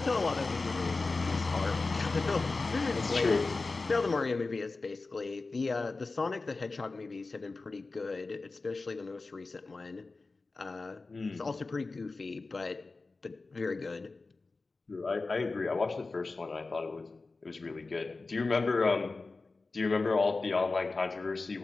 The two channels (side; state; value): right; quieter; 3.7 dB